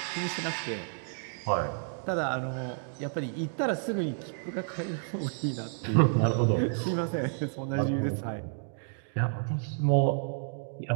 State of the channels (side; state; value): left; silent; 57 dB below the other